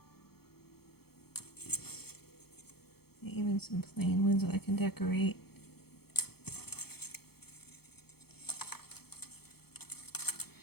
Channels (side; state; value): right; late; 0.96 ms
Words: Even some plain ones that I can decorate.